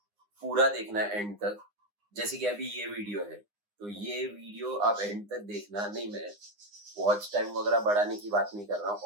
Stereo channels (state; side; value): late; left; 9.8 ms